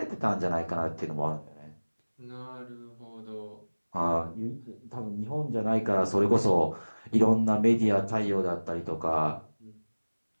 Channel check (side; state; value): both; inverted; correlation -1.00